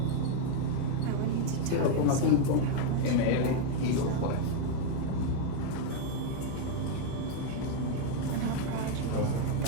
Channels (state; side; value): different; both; correlation 0.01